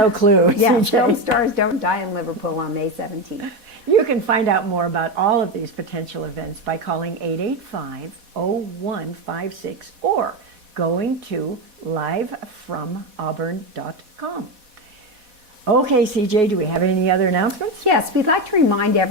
clue. Yeah, CJ. Film Stars Don't Die in Liverpool on May 17th. You can find out more about all of these potential events by calling 885-0156 or going to livefromauburn.com. Okay, CJ, do we have any other announcements? Yes, we'd like to remind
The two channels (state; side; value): late; left; 4.1 ms